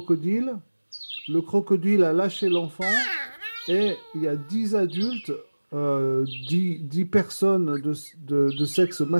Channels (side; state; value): both; inverted; correlation -1.00